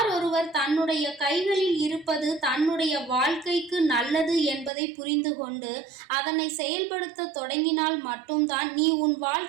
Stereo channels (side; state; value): left; drops out; at 4.7 s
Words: ஒருவர் தன்னுடைய கைகளில் இருப்பது தன்னுடைய வாழ்க்கைக்கு நல்லது என்பதை புரிந்து கொண்டு அதனை செயல்படுத்த தொடங்கினால் மட்டும்தான் நீ உன்